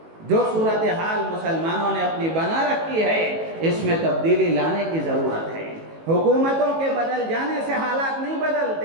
جو صورتحال مسلمانوں نے اپنی بنا رکھی ہے، اس میں تبدیلی لانے کی ضرورت ہے۔ حکومتوں کے بدل جانے سے حالات نہیں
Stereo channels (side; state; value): left; late; 18 ms